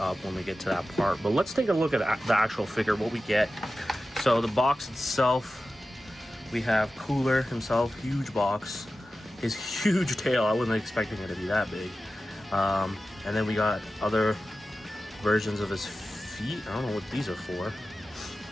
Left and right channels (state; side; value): normal; both; correlation 0.94